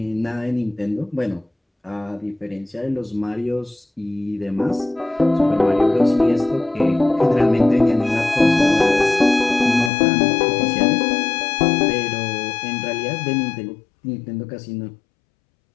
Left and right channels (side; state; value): right; drops out; at 9.9 s